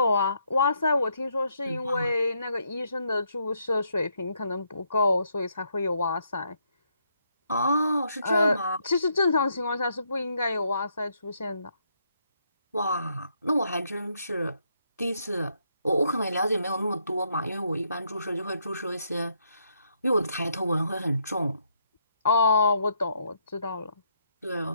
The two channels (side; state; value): both; inverted; correlation -0.75